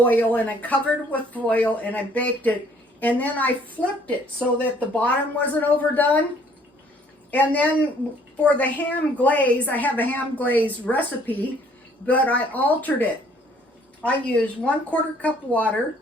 and I covered it with foil, and I baked it, and then I flipped it so that the bottom wasn't overdone. And then for the ham glaze, I have a ham glaze recipe, but I altered it. I used 1/4 cup water,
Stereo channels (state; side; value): normal; both; correlation 0.60